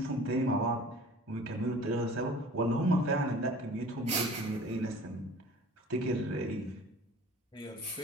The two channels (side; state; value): both; normal; correlation 0.45